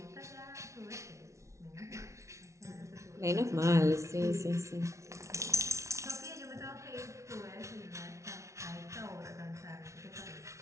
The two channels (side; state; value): left; late; 0.14 ms